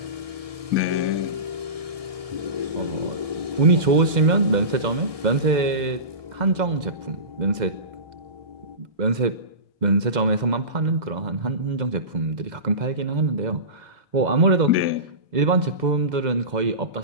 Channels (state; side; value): late; left; 2.0 ms